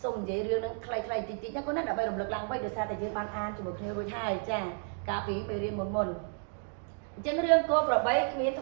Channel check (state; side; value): silent; left; 56 dB below the other